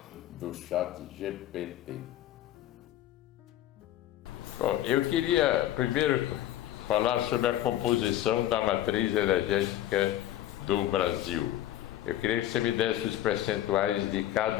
do ChatGPT. Bom, eu queria primeiro falar sobre a composição da matriz energética do Brasil. Eu queria que você me desse os percentuais de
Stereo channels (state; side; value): quieter; right; 13.1 dB